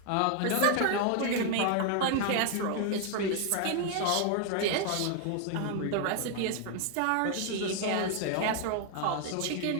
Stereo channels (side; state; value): both; different; correlation 0.01